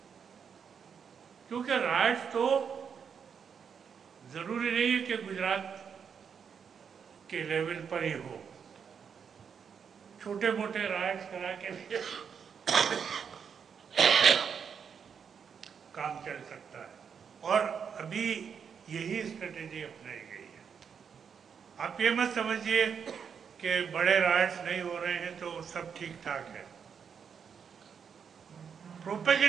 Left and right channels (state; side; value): quieter; left; 6.9 dB